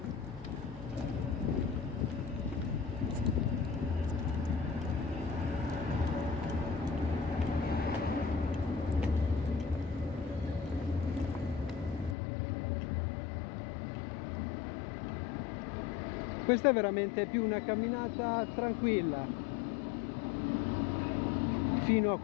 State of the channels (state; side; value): drops out; right; at 12.2 s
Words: Questa è veramente più una camminata tranquilla fino a